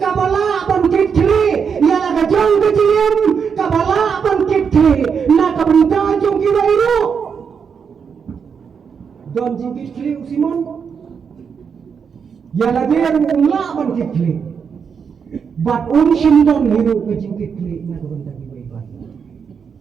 kabala bangkit kili yala kajong kajiem kabala bangkit kili na kabunta jong kiwairu don jingkit kili usiman yala dia umla bangkit kili bat umshimdon hiru kajingkit kili na kabunta kiwairu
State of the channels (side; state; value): left; quieter; 6.5 dB